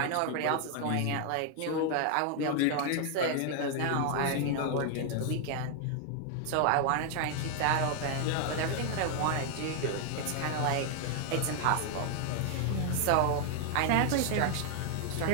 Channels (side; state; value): both; different; correlation 0.00